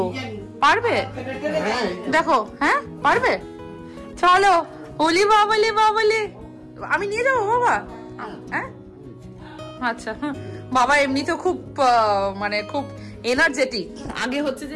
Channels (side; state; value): both; identical; correlation 1.00